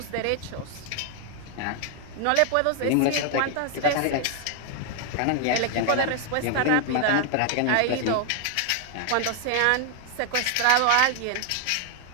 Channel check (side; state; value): both; different; correlation 0.00